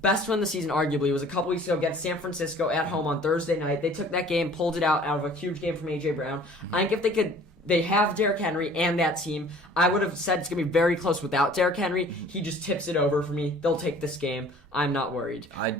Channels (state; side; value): normal; both; correlation 0.50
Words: win of the season arguably was a couple weeks ago against San Francisco at home on Thursday night. They took that game, pulled it out of a huge game from A.J. Brown. I think if they could. They have Derrick Henry and that team. I would have said it's going to be very close without Derrick Henry. He just tips it over for me. They'll take this game. I'm not worried.